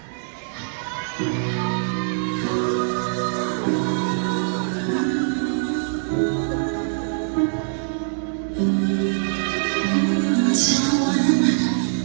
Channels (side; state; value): left; silent; 62 dB below the other